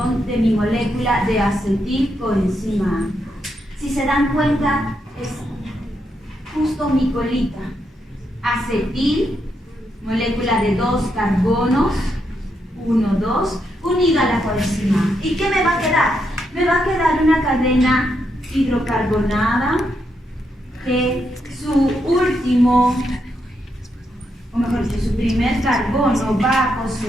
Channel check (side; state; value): both; normal; correlation 0.81